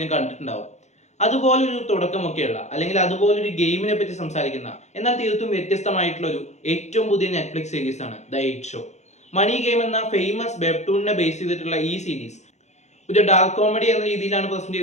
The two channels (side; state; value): right; late; 0.33 ms